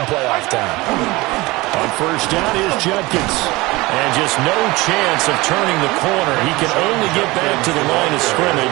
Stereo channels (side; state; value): left; quieter; 21.6 dB